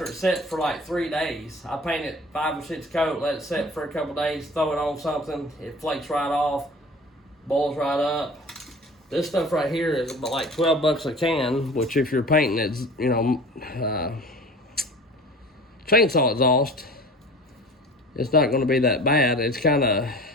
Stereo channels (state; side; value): normal; both; correlation 0.41